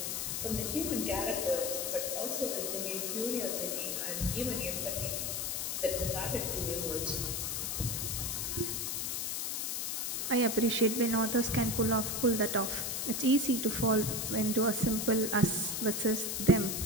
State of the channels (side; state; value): left; noise; hiss, 1 dB below the sound